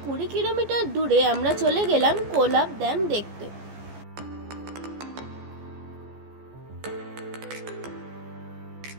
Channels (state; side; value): late; left; 14 ms